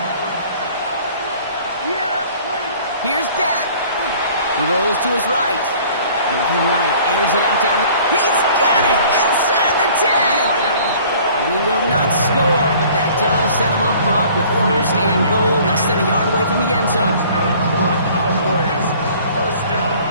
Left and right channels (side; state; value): both; inverted; correlation -0.51